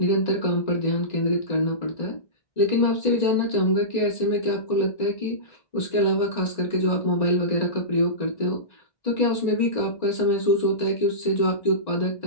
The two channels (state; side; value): late; right; 1.9 ms